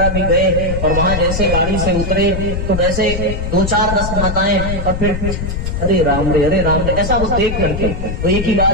भी गए और वहां जैसे गाड़ी से उतरे तो वैसे 2-4-10 माताएं और फिर अरे राम रे ऐसा वो देख करके तो एक ही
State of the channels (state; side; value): noise; left; rumble, 3 dB below the sound